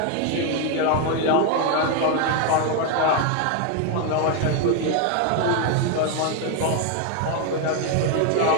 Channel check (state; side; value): different; both; correlation 0.01